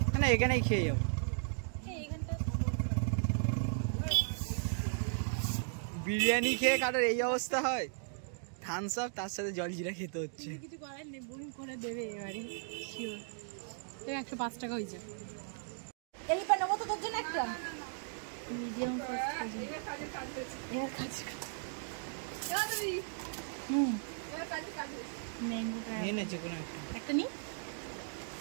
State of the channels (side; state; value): left; silent; digital silence